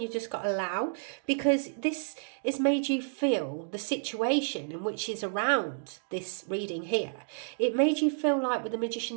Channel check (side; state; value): left; silent; digital silence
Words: you just got to allow, because this has made you feel the situation in which is around this reading here. It made you feel like, with the